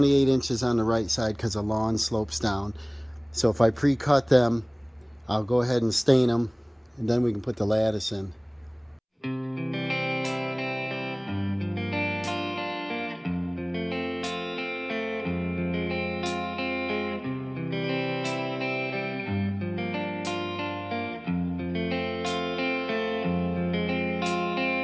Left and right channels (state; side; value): identical; both; correlation 1.00